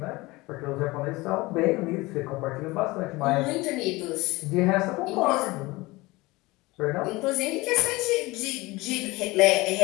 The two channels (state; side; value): quieter; right; 21.7 dB